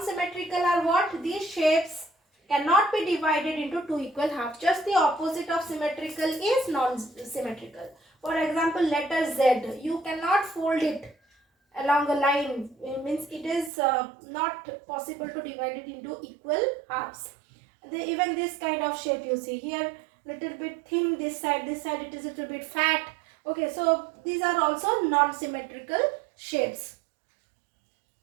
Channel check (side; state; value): left; drops out; at 13.7 s